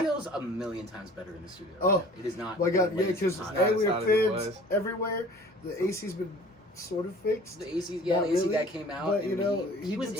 a million times better in the studio. Oh, right now. It is not. My God, yeah, because hot. we hot are as it fans everywhere. The AC's been sort of fixed. The AC, yeah, Not the AC really, guy came out. but, and you know, he was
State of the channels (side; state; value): both; normal; correlation 0.47